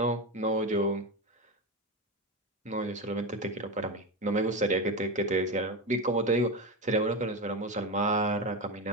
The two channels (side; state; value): both; normal; correlation 0.18